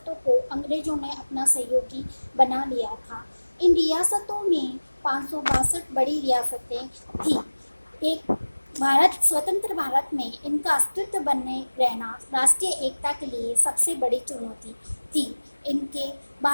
को अंग्रेजों ने अपना सहयोगी बना लिया था। इन रियासतों में 562 बड़ी रियासतें थीं। एक भारत स्वतंत्र भारत में इनका अस्तित्व बने रहना राष्ट्रीय एकता के लिए सबसे बड़ी चुनौती थी। इनके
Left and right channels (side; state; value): both; inverted; correlation -1.00